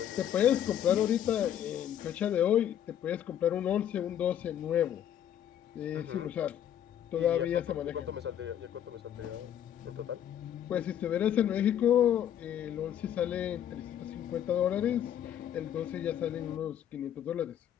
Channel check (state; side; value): quieter; right; 10.2 dB